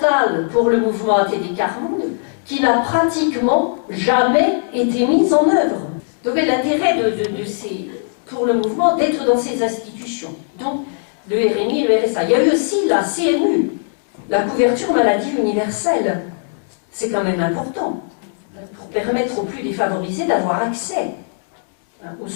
pour le mouvement ATD Quart Monde, qui n'a pratiquement jamais été mis en œuvre. Donc l'intérêt pour le mouvement d'être dans ces institutions. Donc le RMI et le RSA. Il y a eu aussi la CMU, la couverture maladie universelle. C'est quand même important, pour permettre aux plus défavorisés d'avoir accès aux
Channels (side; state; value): right; silent; digital silence